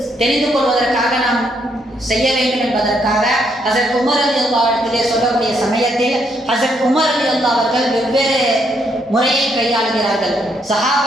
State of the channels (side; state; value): both; normal; correlation 0.74